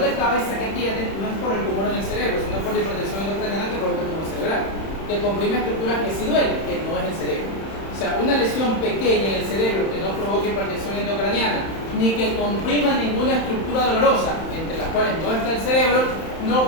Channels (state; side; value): late; right; 31 ms